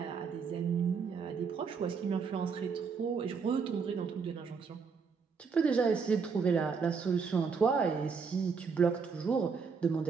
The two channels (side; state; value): left; quieter; 5.6 dB